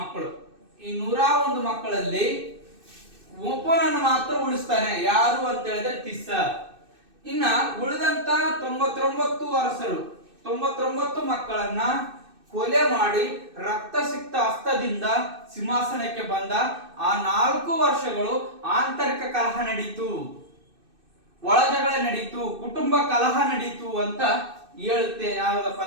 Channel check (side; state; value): left; late; 2.6 ms